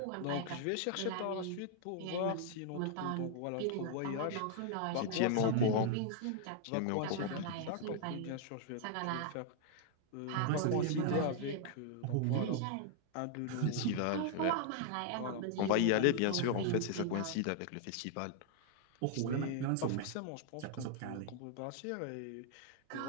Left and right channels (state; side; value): different; both; correlation 0.00